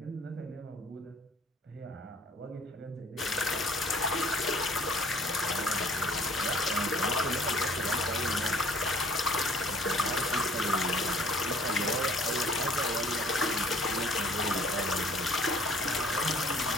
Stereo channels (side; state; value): both; normal; correlation 0.55